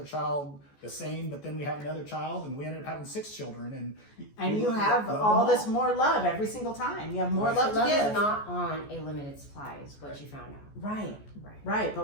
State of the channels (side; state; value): right; late; 14 ms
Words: child the same, but then we have another child, and we ended up having 6 children. And you have all this more love every single time. You have more love to give. Love is not on a limited supply, is what you found out. Right.